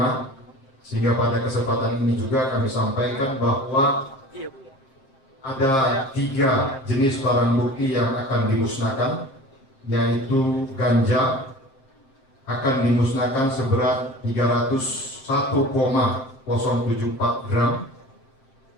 sehingga pada kesempatan ini juga kami sampaikan bahwa ada 3 jenis barang bukti yang akan dimusnahkan, yaitu ganja akan dimusnahkan seberat 301,074 gram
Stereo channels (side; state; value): right; late; 7.5 ms